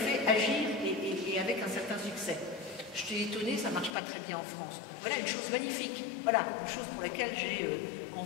agir et avec un certain succès. Je t'ai étonné, ça ne marche pas très bien en France. Voilà une chose magnifique, voilà une chose pour laquelle j'ai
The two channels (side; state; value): right; drops out; at 4.0 s